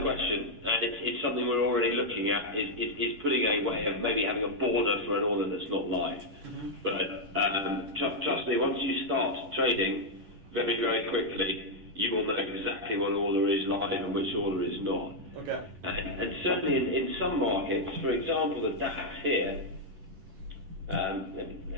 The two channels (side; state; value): left; late; 10 ms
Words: and it's something we're already looking at. Is putting a way of maybe having a border for an order that's not live. Mm-hmm. But trust me, once you start trading, very very quickly, you will know exactly what order is live and which order is not. Okay. And certainly in some markets, for example, the DAX here. Let